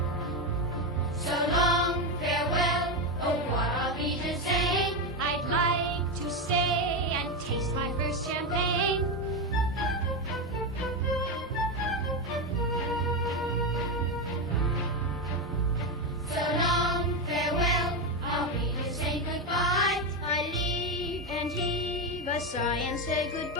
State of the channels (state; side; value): normal; both; correlation 0.11